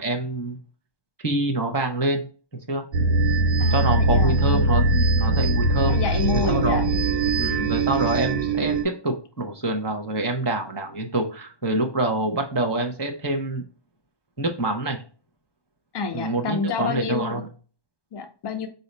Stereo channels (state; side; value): late; right; 1.2 ms